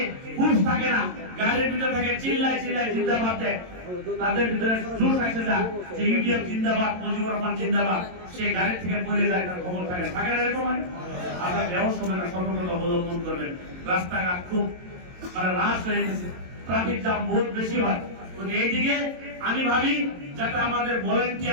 হুঁশ থাকে না, গাড়ির ভিতরে থাকে চিল্লাই চিল্লাই জিন্দাবাদ দেয়, তাদের ভিতরে জোশ আসে যায় যে ইউডিএফ জিন্দাবাদ, মুজিবুর রহমান জিন্দাবাদ, সে গাড়ি থেকে পড়ে যায়, তার খবর থাকে থাকে না এরকম। আপনার ব্যবস্থা হবে না, সতর্কতা অবলম্বন করবেন। রাস্তাঘাট খুব রাশ হয়ে গেছে, ট্রাফিক জ্যাম বহুত বেশি হয়। এইদিকে আমি ভাবি যাতে আমাদের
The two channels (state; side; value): late; left; 22 ms